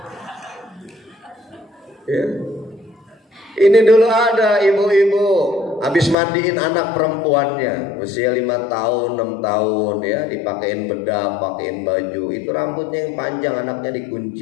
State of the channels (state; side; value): drops out; right; at 6.2 s